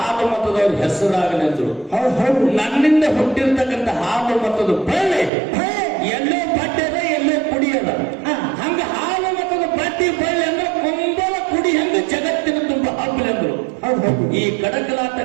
ಮತದವ್ರ ಹೆಸರಾಗಲೆಂದ್ರು. ನನ್ನಿಂದ ಹುಟ್ಟಿರ್ತಕ್ಕಂಥ ಹಾಲು ಮತದ ಬಳ್ಳಿ ಎಲ್ಲೋ ಬಡ್ಡದ ಎಲ್ಲೋ ಕುಡಿಯದ. ಹಂಗ ಹಾಲು ಮತದ ಬಡ್ಡಿ ಬಳ್ಳಿ ಅಂದ್ರೆ ಕುಂಬಲ ಕುಡಿ ಹೆಂಗ ಜಗತ್ತಿನ ತುಂಬ ಹಬ್ಬಲೆಂದ್ರು. ಈ ಕಡಕಲಾಟ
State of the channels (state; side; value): drops out; left; at 5.3 s